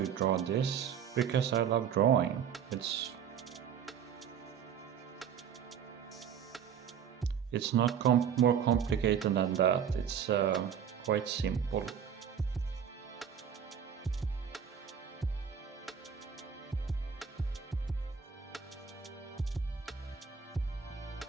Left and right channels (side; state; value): left; quieter; 7.8 dB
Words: you draw this? Because I love drawing. It's not more complicated than that. It's quite simple.